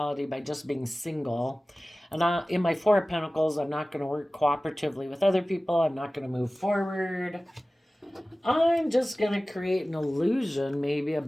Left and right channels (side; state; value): both; normal; correlation 0.97